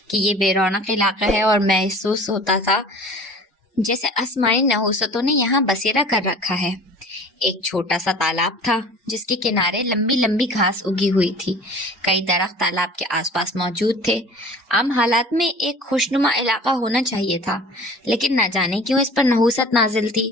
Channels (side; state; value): both; normal; correlation 0.44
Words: کہ یہ بے رونق علاقہ ہے، اور محسوس ہوتا تھا جیسے آسمانی نحوستوں نے یہاں بسیرا کر رکھا ہے۔ ایک چھوٹا سا تالاب تھا جس کے کنارے لمبی لمبی گھاس اگی ہوئی تھی۔ کئی درخت تالاب کے آس پاس موجود تھے۔ عام حالات میں ایک خوشنما علاقہ ہونا چاہیے تھا، لیکن نہ جانے کیوں اس پر نحوست نازل تھی